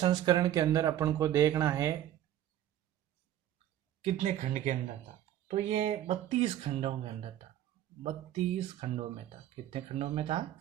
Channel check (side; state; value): left; quieter; 12.0 dB